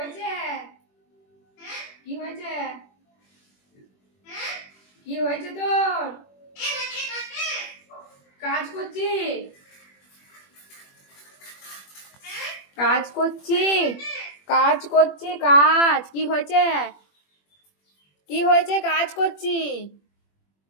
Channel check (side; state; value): right; late; 21 ms